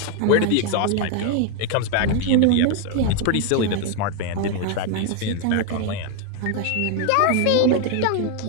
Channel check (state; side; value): different; both; correlation 0.01